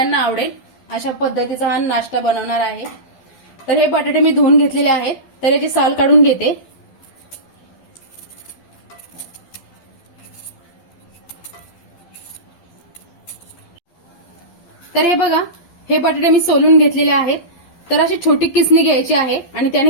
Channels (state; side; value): late; right; 12 ms